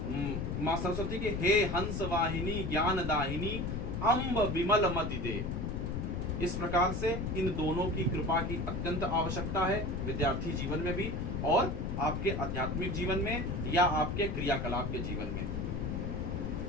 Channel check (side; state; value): left; noise; rumble, 2 dB below the sound